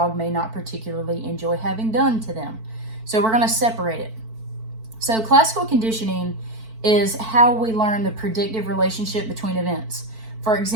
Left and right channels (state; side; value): late; left; 4.5 ms